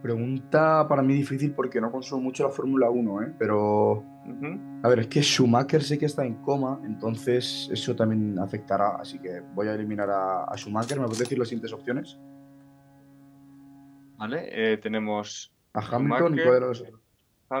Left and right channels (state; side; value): identical; both; correlation 1.00